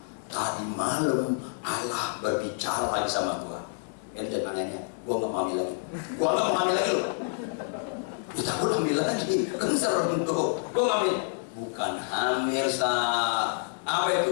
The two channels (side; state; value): right; silent; digital silence